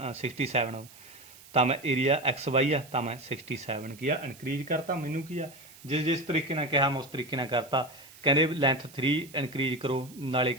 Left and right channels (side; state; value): right; noise; hiss, 21 dB below the sound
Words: ਤਾਂ ਮੈਂ ਏਰੀਆ XY ਆ ਤਾਂ ਮੈਂ 67 ਕੀ ਆ ਇਨਕਰੀਜ਼ ਕਰਤਾ। ਮੈਨੂੰ ਕੀ ਆ ਜਿਸ ਤਰੀਕੇ ਨਾਲ ਕਿਹਾ ਮੈਂ ਉਸ ਤਰੀਕੇ ਨਾਲ ਕਰਤਾ। ਕਹਿੰਦੇ ਲੈਂਥ 3 ਇਨਕਰੀਜ਼ ਕਰੋ, ਨਾਲੇ